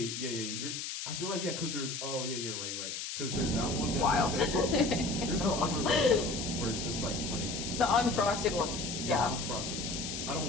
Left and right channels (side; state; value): left; noise; hiss, 5 dB below the sound